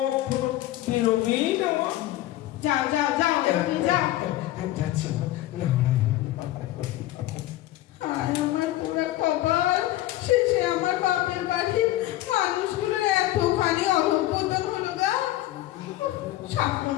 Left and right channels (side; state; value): right; quieter; 15.4 dB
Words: বেরোবেই না মা। যাও যাও যাও, এবার তুমি যাও। যাচ্ছি মা। হায় আমার পুরো